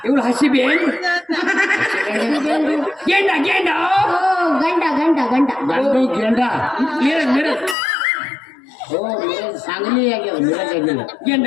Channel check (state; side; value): drops out; right; at 7.8 s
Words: ಇವಳು ಹಸಿಬೆ ಗೇಂಡ ಗೇಂಡ. ಓ ಗಂಡ ಗಂಡ ಗಂಡ ಗಂಡು ಗೇಂಡ. ಮಿರಜ್ ಮಿರಜ್. ಓ ಮಿರಜ್ ಸಾಂಗ್ಲಿ ಆಗ್ಯದ. ಮಿರಜ್ ಆಗಿಲ್ಲ. ಗೇಂಡ